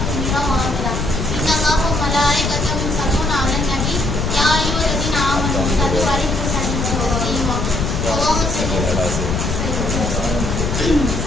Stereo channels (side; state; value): left; noise; rumble, 1 dB below the sound